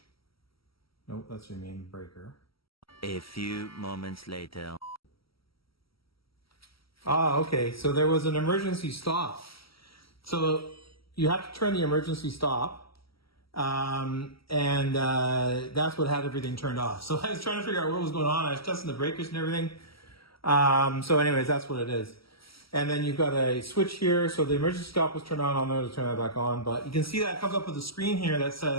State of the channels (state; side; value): late; right; 0.75 ms